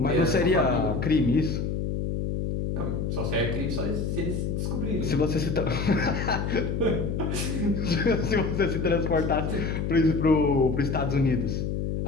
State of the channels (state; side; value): noise; left; hum, 1 dB below the sound